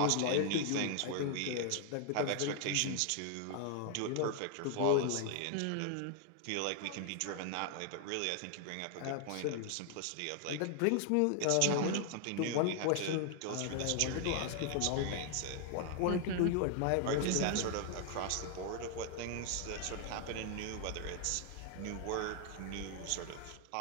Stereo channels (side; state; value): both; different; correlation 0.00